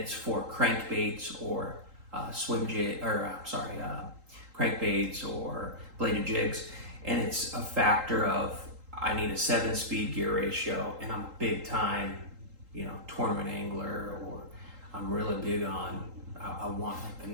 for crankbaits or crankbaits or bladed jigs, and it's a factor of I need a 7-speed gear ratio, and I'm a big time, tournament angler, or I'm really big on, I want like the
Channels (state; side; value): late; left; 3.8 ms